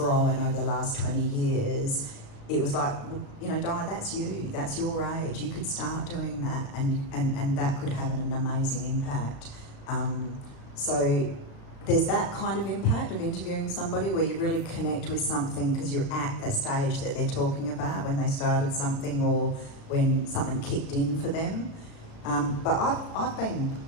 over the last 20 years, it was like, you know, Donna, that's you, that's your age. You could start doing that and that could have an amazing impact. So there's that kind of impact of interviewing somebody where you really connect with something because you're at the stage that they're talking about when they started something or when something kicked in for them. But I've been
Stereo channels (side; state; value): right; late; 35 ms